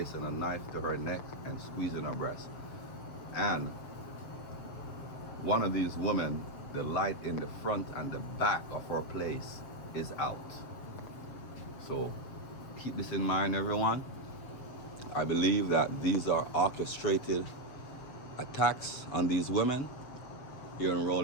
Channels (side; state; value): right; late; 7.6 ms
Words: a knife to her neck and squeezing her breast. And one of these women, the light in the front and the back of her place is out. So keep this in mind, everyone. I believe that these are orchestrated attacks on these women here in